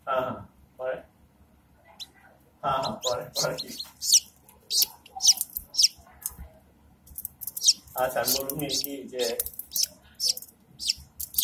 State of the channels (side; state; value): both; identical; correlation 1.00